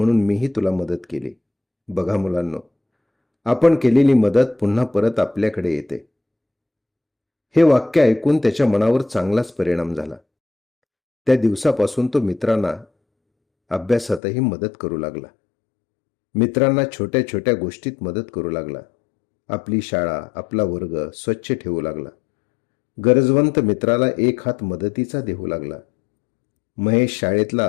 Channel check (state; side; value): drops out; right; at 14.2 s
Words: मीही तुला मदत केली. बघा मुलांनो, आपण केलेली मदत पुन्हा परत आपल्याकडे येते. हे वाक्य ऐकून त्याच्या मनावर चांगलाच परिणाम झाला. त्या दिवसापासून तो मित्रांना अभ्यासातही मदत करू लागला. मित्रांना छोट्या छोट्या गोष्टीत मदत करू लागला. आपली शाळा, आपला वर्ग स्वच्छ ठेवू लागला. गरजवंत मित्राला एक हात मदतीचा देऊ लागला. महेश शाळेतला